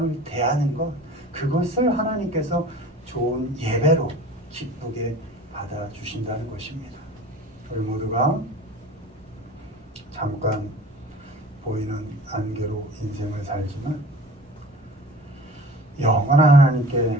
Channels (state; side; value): normal; both; correlation 0.41